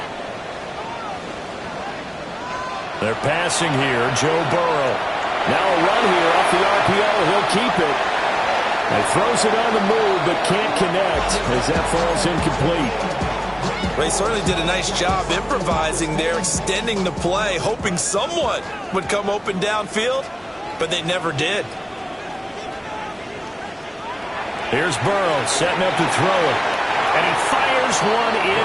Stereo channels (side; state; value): both; identical; correlation 1.00